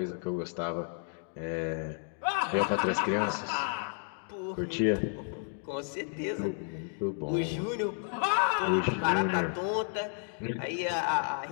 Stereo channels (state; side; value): silent; right; 57 dB below the other